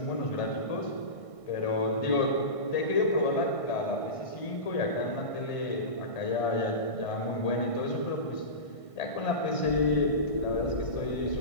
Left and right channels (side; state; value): right; late; 1.5 ms